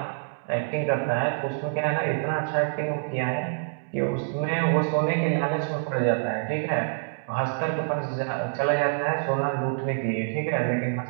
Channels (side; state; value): left; silent; digital silence